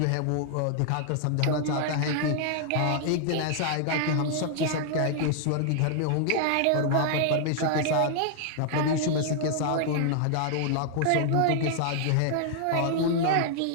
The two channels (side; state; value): both; different; correlation -0.01